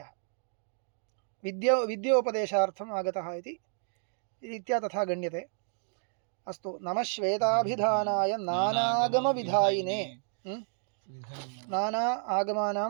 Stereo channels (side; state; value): left; silent; 57 dB below the other